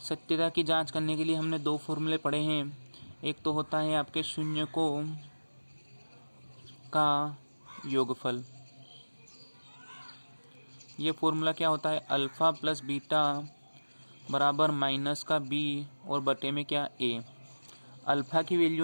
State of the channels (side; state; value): both; inverted; correlation -1.00